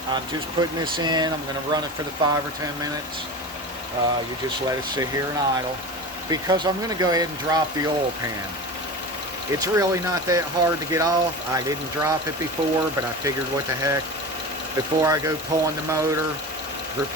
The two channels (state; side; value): normal; both; correlation 0.30